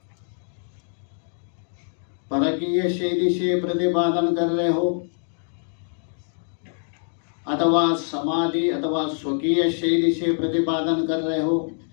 परकीय शैली से प्रतिपादन कर रहे हो अथवा समाधि अथवा स्वकीय शैली से प्रतिपादन कर रहे हो,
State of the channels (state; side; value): silent; right; digital silence